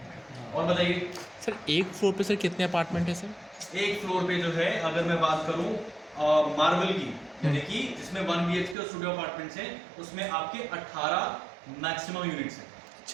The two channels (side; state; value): left; drops out; at 8.8 s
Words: और बताइए सर एक फ्लोर पे सर कितने अपार्टमेंट है सर? एक फ्लोर पे जो है अगर मैं बात करूं मार्बल की, यानी कि जिसमें 1 BHK और स्टूडियो अपार्टमेंट्स हैं, उसमें आपके 18 मैक्सिमम यूनिट्स हैं,